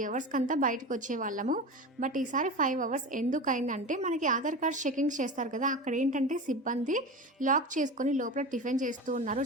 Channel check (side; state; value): both; normal; correlation 0.28